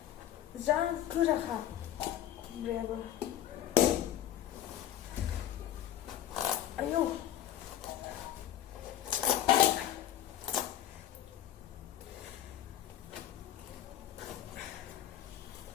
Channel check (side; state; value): right; quieter; 11.7 dB